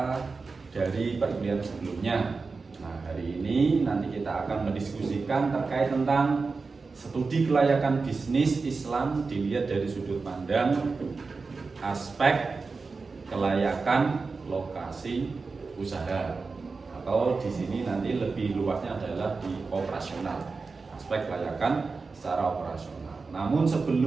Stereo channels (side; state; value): left; quieter; 4.3 dB